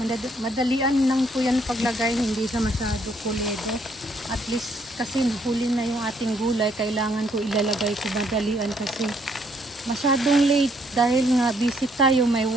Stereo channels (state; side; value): normal; both; correlation 0.69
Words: Madalian lang po yan paglagay, hindi siya masyado kuledo. At least kasi huli na yung ating gulay, kailangan ko ilalagay ko madalian kasi masyadong late dahil nga busy tayo, may